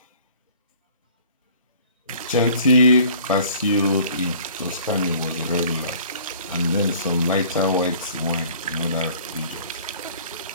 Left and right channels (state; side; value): inverted; both; correlation -0.52